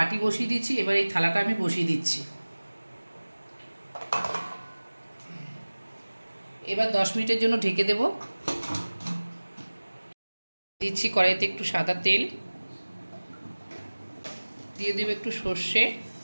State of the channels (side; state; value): both; inverted; correlation -1.00